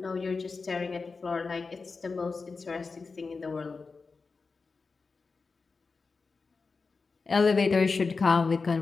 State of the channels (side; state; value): right; quieter; 4.4 dB